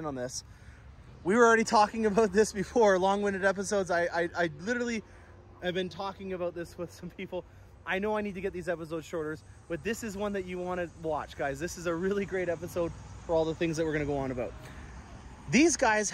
on this. We were already talking about this before, long-winded episodes. I literally have been talking about this with some people. I know I need to get these episodes shorter, but this is one that you want to watch, guys. This is a really great episode for all the things that we're going to go on about. These guys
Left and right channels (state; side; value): identical; both; correlation 1.00